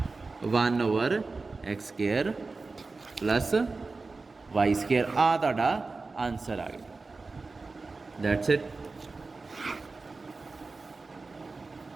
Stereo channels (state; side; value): quieter; left; 3.9 dB